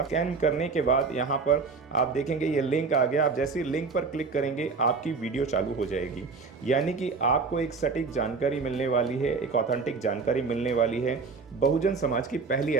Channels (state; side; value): quieter; left; 4.6 dB